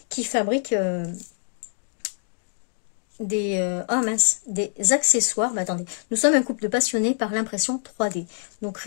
qui fabrique des accessoires. Bah, attendez, nous sommes un couple de passionnés par l'impression 3D. Nous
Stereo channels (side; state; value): right; silent; 62 dB below the other